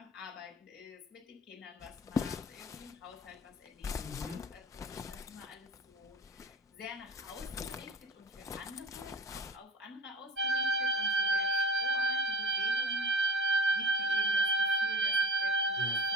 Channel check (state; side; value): normal; both; correlation 0.34